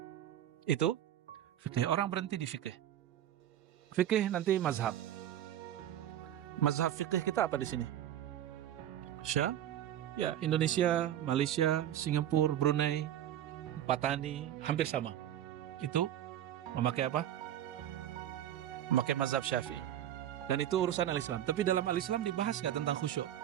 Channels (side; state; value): left; quieter; 11.5 dB